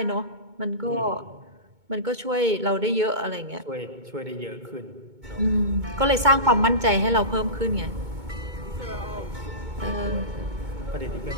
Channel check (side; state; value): left; late; 2.2 ms